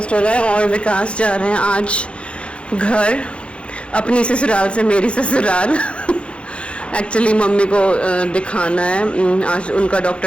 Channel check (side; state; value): right; late; 0.059 ms